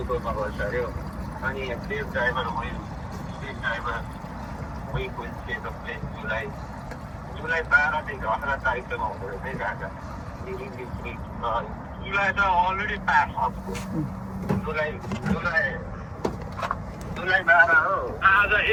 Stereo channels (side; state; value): both; identical; correlation 1.00